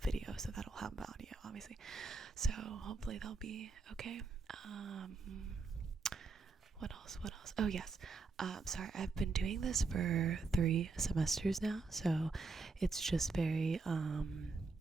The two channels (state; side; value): quieter; left; 4.1 dB